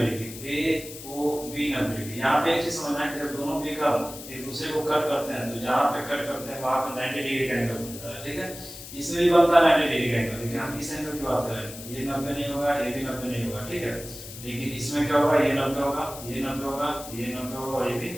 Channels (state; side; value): noise; left; hiss, 13 dB below the sound